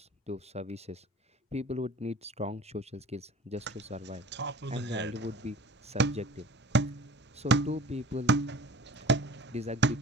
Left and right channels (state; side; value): normal; both; correlation 0.43